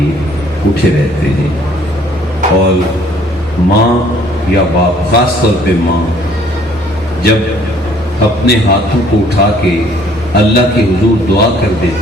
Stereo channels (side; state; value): both; normal; correlation 0.59